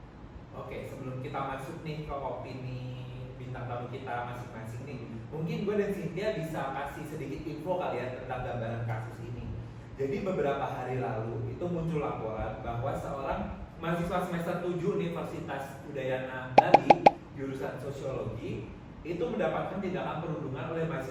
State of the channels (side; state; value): both; identical; correlation 1.00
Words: Oke, sebelum kita masuk nih ke opini bintang tamu kita masing-masing nih, mungkin gue dan Cynthia bisa kasih sedikit info kali ya tentang gambaran kasus ini. Jadi beberapa hari lalu itu muncul laporan bahwa seorang mahasiswa semester 7 Universitas Udayana Bali jurusan sosiologi itu mendapatkan tindakan perundungan oleh